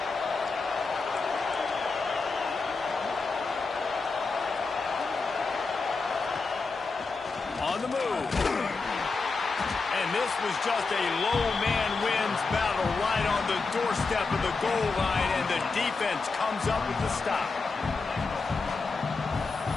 On the move. And this was just a low man wins battle right on the doorstep of the goal line, and the defense comes up with the stop.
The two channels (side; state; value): right; quieter; 4.2 dB